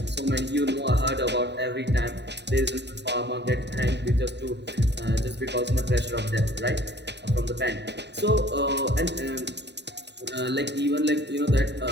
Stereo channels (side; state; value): left; late; 0.50 ms